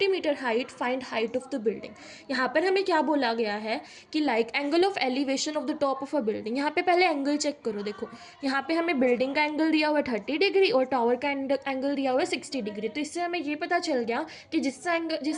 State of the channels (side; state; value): both; identical; correlation 1.00